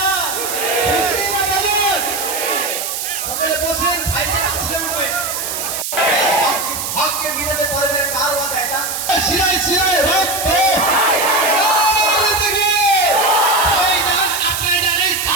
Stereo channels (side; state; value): right; noise; hiss, 4 dB below the sound